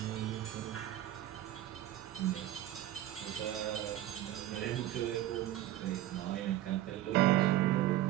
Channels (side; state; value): left; quieter; 13.6 dB